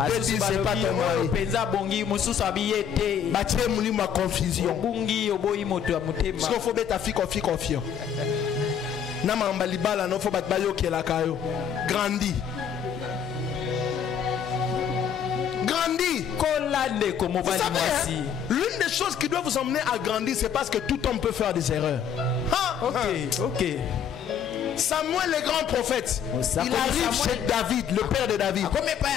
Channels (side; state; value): right; quieter; 8.0 dB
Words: 2 disent c'est pas ton mari. Bâtir mouli ma confusion. Parce qu'il faut mettre ta fille confiant. Nama mbalibala no faut battre bayo qui la kayo. Grandis. Grandis. Vous savez, hein, l'une des choses qui doit vous emmener à grandir, c'est parce que tout homme peut faire des erreurs. Ok. Samuel, le grand prophète, il arrive chez David, le père de David.